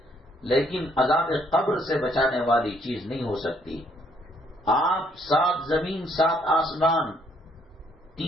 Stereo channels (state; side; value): normal; both; correlation 0.68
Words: لیکن عذاب قبر سے بچانے والی چیز نہیں ہو سکتی۔ آپ 7 زمین 7 آسمان،